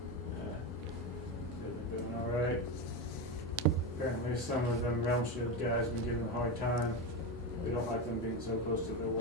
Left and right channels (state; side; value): normal; both; correlation 0.16